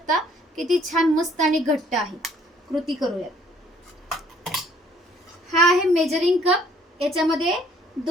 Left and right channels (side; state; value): both; normal; correlation 0.61